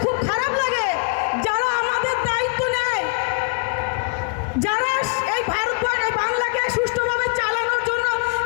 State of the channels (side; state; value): right; quieter; 34.7 dB